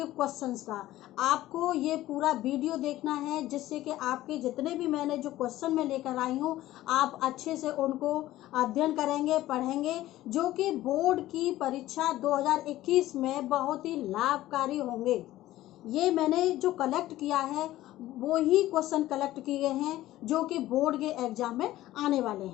क्वेश्चंस का। आपको ये पूरा वीडियो देखना है जिससे कि आपके जितने भी मैंने जो क्वेश्चन में लेकर आई हूँ आप अच्छे से उनको अध्ययन करेंगे, पढ़ेंगे, जो कि बोर्ड की परीक्षा 2021 में बहुत ही लाभकारी होंगे। ये मैंने जो कलेक्ट किया है वो ही क्वेश्चन कलेक्ट किए गए हैं जो कि बोर्ड के एग्जाम में आने वाले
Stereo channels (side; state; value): right; quieter; 15.3 dB